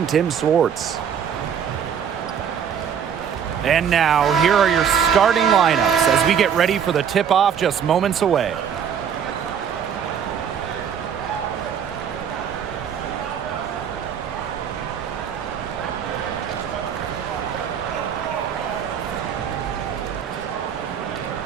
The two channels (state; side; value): quieter; left; 7.9 dB